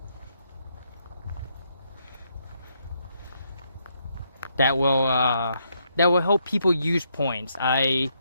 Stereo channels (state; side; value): inverted; both; correlation -0.76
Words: that will help people use points.